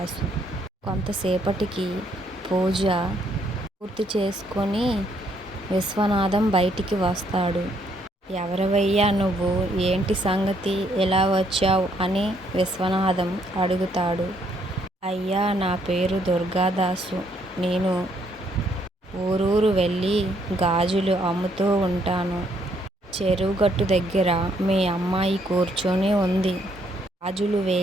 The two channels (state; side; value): normal; both; correlation 0.70